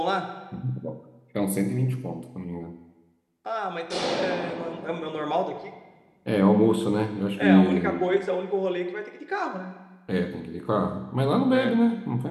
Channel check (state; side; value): identical; both; correlation 1.00